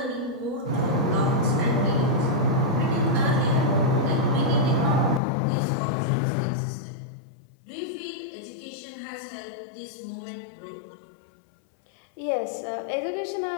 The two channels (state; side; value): drops out; right; at 5.2 s